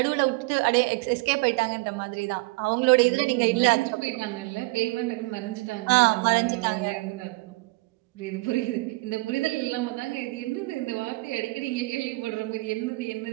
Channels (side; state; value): left; quieter; 24.4 dB